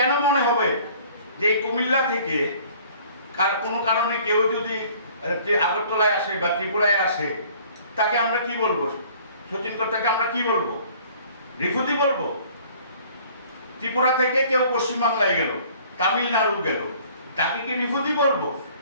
মনে হবে যে কুমিল্লা থেকে কোনো কারণে কেউ যদি আগরতলায় আসে বা ত্রিপুরায় আসে তাকে আমরা কি বলবো? সতীন কর্তাকে আমরা কি বলবো? রিফিউজি বলবো? ত্রিপুরা থেকে কেউ পশ্চিমবাংলায় গেল, তামিলনাড়ু গেল, তাকে কি রিফিউজি বলবো?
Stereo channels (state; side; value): inverted; both; correlation -0.53